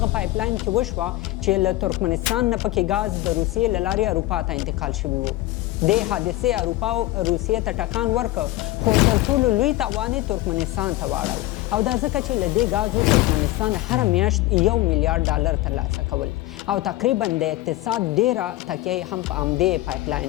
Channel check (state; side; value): quieter; right; 17.1 dB